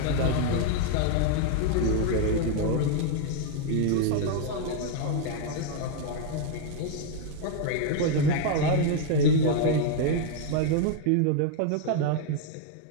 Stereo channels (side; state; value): both; different; correlation 0.00